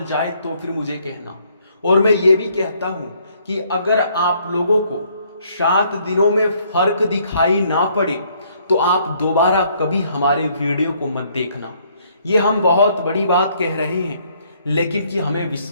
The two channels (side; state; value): both; inverted; correlation -0.66